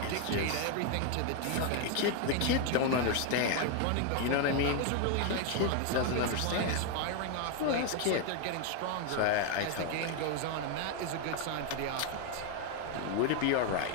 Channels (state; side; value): different; both; correlation 0.01